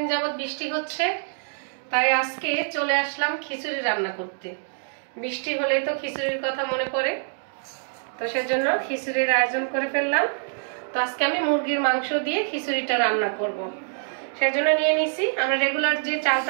যাবত বৃষ্টি হচ্ছে, তাই আজকে চলে আসলাম খিচুড়ি রান্না করতে। বৃষ্টি হলেই তো খিচুড়ির কথা মনে পড়ে, তো সেজন্য খিচুড়ির আয়োজন করে ফেললাম। তো আজকে আমি মুরগির মাংস দিয়ে খিচুড়িটা রান্না করব। সেজন্য নিয়ে নিছি আমরা রেগুলার যে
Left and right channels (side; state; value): left; silent; digital silence